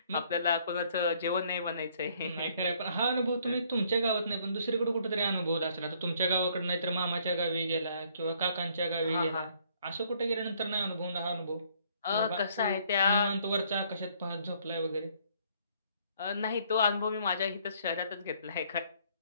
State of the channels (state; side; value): inverted; both; correlation -0.64